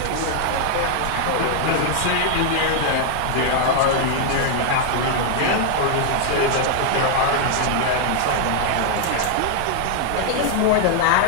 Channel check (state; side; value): different; both; correlation 0.00